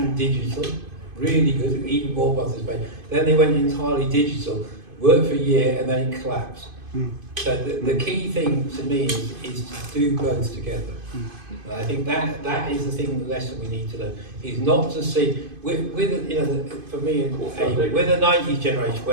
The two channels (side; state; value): left; late; 2.5 ms